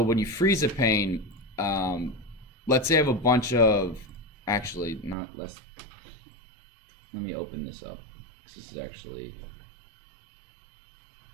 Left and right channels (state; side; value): drops out; left; at 5.2 s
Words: when you freeze a pane, let's say I have a bunch of, actually not less. let me open this up because this is actually.